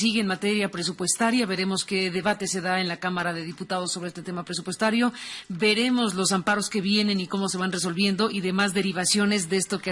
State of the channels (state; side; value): identical; both; correlation 1.00